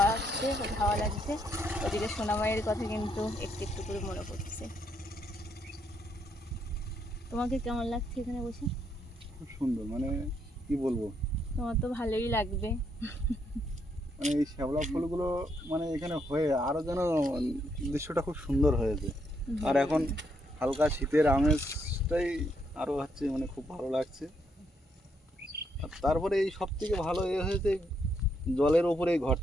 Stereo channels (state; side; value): normal; both; correlation 0.75